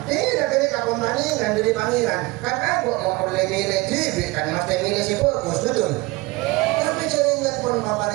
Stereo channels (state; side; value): quieter; left; 22.3 dB